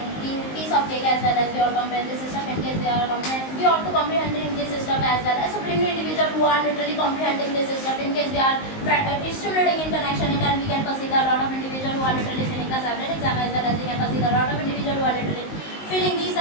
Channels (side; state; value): right; late; 19 ms